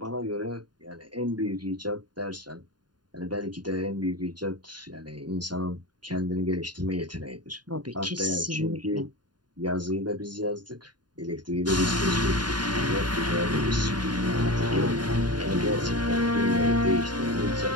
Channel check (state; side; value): late; left; 0.70 ms